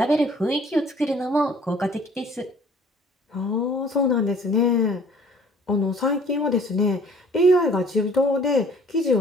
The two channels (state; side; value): normal; both; correlation 0.54